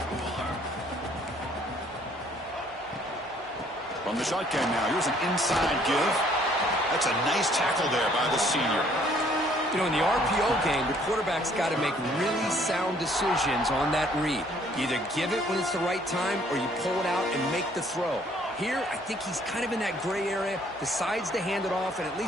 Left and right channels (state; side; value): normal; both; correlation 0.62